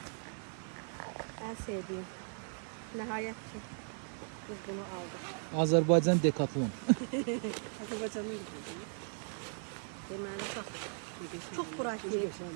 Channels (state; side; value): silent; left; 53 dB below the other